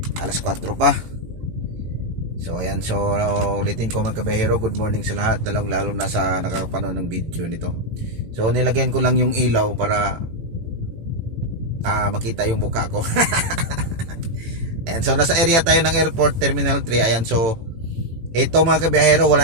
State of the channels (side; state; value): left; late; 18 ms